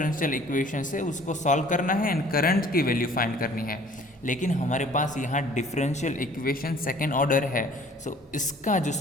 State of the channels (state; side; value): normal; both; correlation 0.53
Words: इक्वेशन है उसको सॉल्व करना है एंड करंट की वैल्यू फाइंड करनी है। लेकिन हमारे पास यहाँ डिफरेंशियल इक्वेशन सेकेंड ऑर्डर है, सो इसका जो